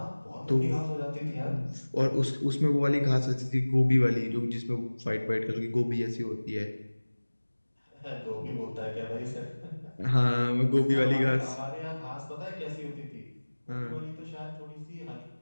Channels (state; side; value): inverted; both; correlation -1.00